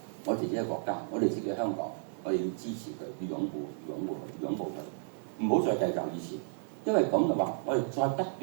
我哋自己嘅國家，我哋自己嘅香港，我哋要支持佢，要擁護佢，唔好再計較以前。因為咁嘅話，我哋再不斷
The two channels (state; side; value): silent; left; digital silence